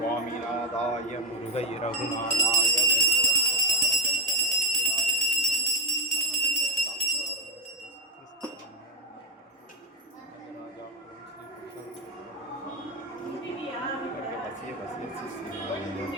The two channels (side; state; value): both; normal; correlation 0.12